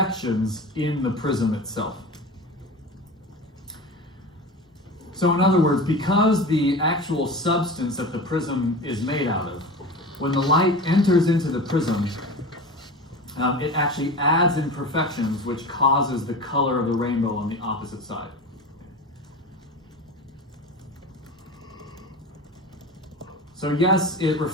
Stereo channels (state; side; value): normal; both; correlation 0.31